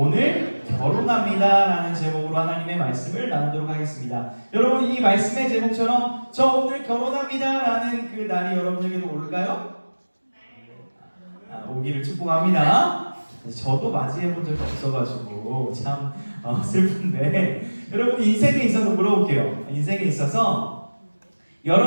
결혼합니다 라는 제목으로 하나님의 말씀을 나누도록 하겠습니다. 여러분, 이 말씀의 제목처럼 저 오늘 결혼합니다 라는 그 날이 여러분에게도 올까요? 오기를 축복합니다. 저도 맞이해본 적이 없어가지고 참 슬픈데, 여러분 인생에 있어서 물어볼게요. 인생에 있어서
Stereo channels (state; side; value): inverted; both; correlation -1.00